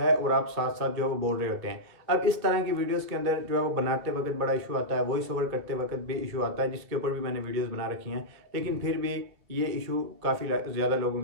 और आप साथ साथ जो है वो बोल रहे होते हैं। अब इस तरह की वीडियोस के अंदर जो है वो बनाते वक्त बड़ा इशू आता है, वॉइस ओवर करते वक्त भी इशू आता है, जिसके ऊपर भी मैंने वीडियोस बना रखी हैं, लेकिन फिर भी ये इशू काफ़ी ज़्यादा लोगों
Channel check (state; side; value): late; left; 1.9 ms